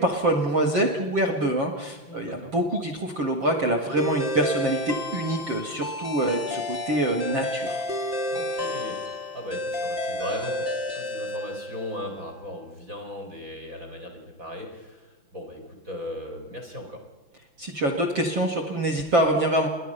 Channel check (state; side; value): late; left; 5.9 ms